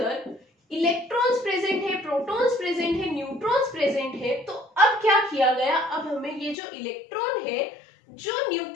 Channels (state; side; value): drops out; right; at 6.6 s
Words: इलेक्ट्रॉन्स प्रेजेंट है, प्रोटॉन्स प्रेजेंट है, न्यूट्रॉन्स प्रेजेंट है, तो अब क्या किया गया, अब हमें ये जो इलेक्ट्रॉन है जो